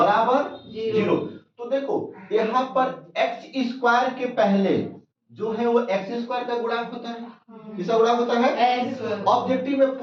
0। तो देखो यहाँ पर x² के पहले जो है वो x² का गुणांक होता है। किसका गुणांक होता है? ऑब्जेक्टिव में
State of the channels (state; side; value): identical; both; correlation 1.00